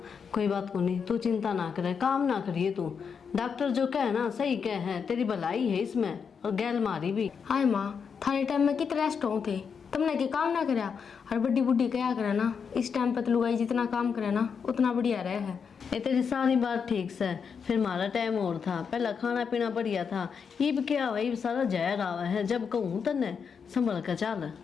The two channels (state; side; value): quieter; right; 6.3 dB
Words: कोई बात को नहीं, तू चिंता ना करे, काम ना करिए तू। डॉक्टर जो कहे ना सही कहे है, तेरी भलाई है इसमें और गैल मारी भी। हाय माँ, थाने टाइम में कितने रेस्ट हो थे, तुमने के काम ना करा। और बड्डी बुड्ढी क्या करे ना, इस टाइम पर तो लुगाई जितना काम करे ना उतना बढ़िया रहे है। ये तेरी सारी बात ठीक से, फिर हमारा टाइम और था, पहला खाना पीना बढ़िया था। इब क्या हुआ, इब सारा जहर आवा है, जब कहूँ तने संभल कर चल।